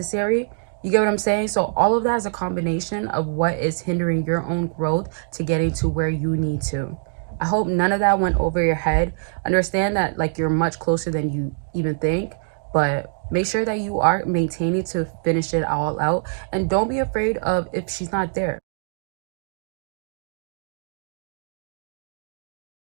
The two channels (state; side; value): silent; left; digital silence